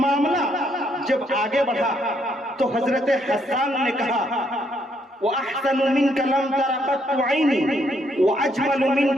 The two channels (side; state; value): both; normal; correlation 0.72